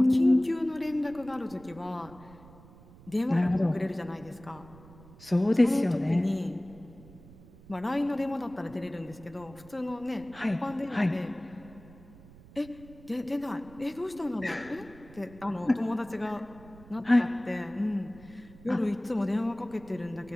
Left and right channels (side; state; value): right; noise; rumble, 21 dB below the sound